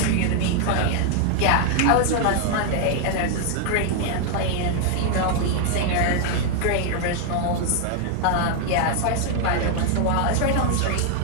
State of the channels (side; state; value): both; different; correlation 0.00